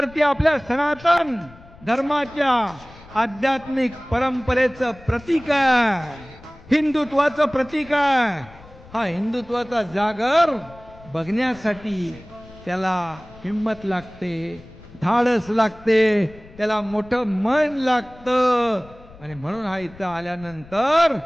ती आपल्या सनातन धर्माच्या आध्यात्मिक परंपरेचं प्रतीक आहे, हिंदुत्वाचं प्रतीक आहे. हा हिंदुत्वाचा जागर बघण्यासाठी त्याला हिम्मत लागते, धाडस लागते, त्याला मोठं मन लागतं. आणि म्हणून हा इथं आल्यानंतर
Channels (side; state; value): left; noise; rumble, 22 dB below the sound